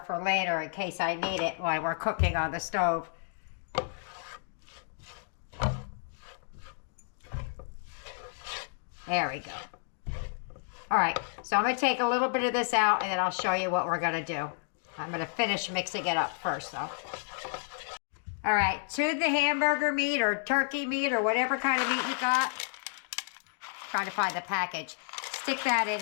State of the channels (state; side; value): silent; right; digital silence